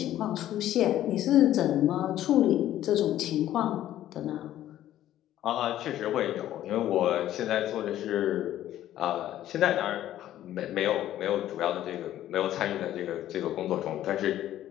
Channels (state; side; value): quieter; right; 12.7 dB